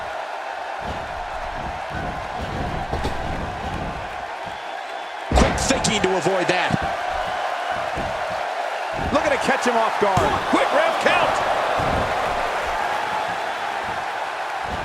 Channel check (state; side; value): identical; both; correlation 1.00